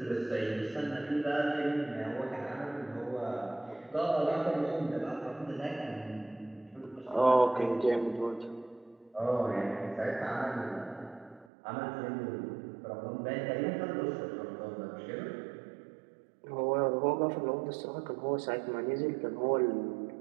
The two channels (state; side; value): drops out; left; at 11.5 s